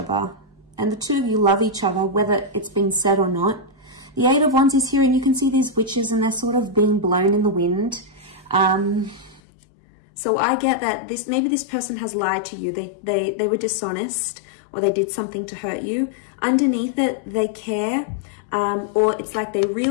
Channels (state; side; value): drops out; right; at 9.4 s